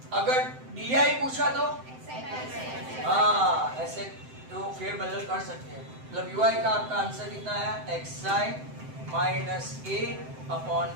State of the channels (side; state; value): left; late; 7.7 ms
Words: अगर डी पूछा तो हाँ ऐसे तो फेर बदल कर सकते हैं। मतलब यूआई का आपका आंसर कितना है? xi minus a upon